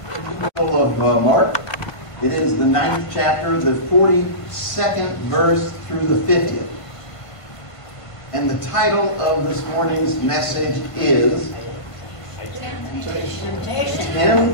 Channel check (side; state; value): right; late; 1.5 ms